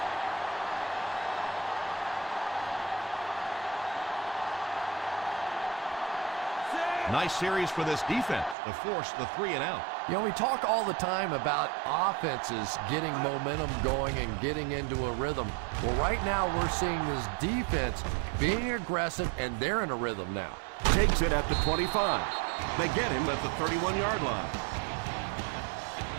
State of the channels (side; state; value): left; drops out; at 8.6 s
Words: Nice series for this defense to force the 3 and out. You know, we talk all the time about offenses getting momentum going and getting into a rhythm. Well, right now we're seeing this defense being aggressive, and they're in a rhythm now. Takes it at the 25. They get him at the 31-yard line.